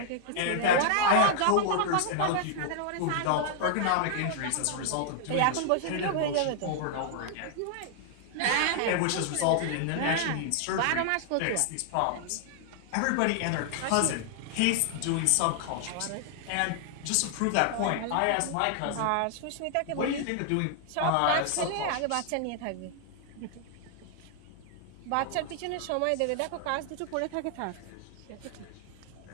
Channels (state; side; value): different; both; correlation 0.00